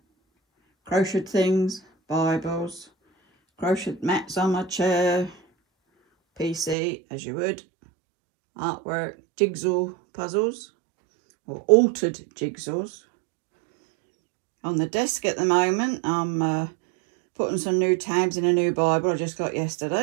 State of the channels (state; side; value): drops out; left; at 6.8 s